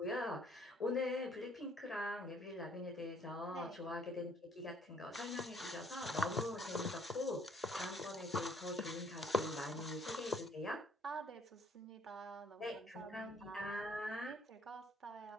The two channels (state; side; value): normal; both; correlation 0.62